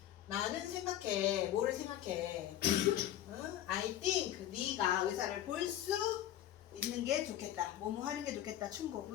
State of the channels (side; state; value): right; quieter; 12.2 dB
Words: 나는 생각해. 뭐를 생각해? I think 네가 의사를 볼 수 있는 게 좋겠다. 뭐뭐 하는 게 좋겠다. 충고.